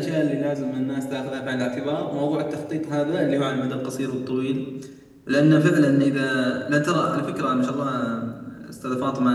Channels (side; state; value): both; identical; correlation 1.00